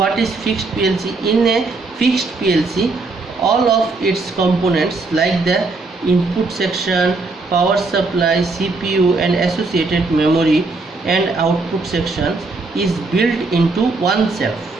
is fixed PLC? In a fixed PLC, all of its components like the input section, power supply, CPU and associated memory and output sections is built into one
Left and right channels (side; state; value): left; quieter; 3.7 dB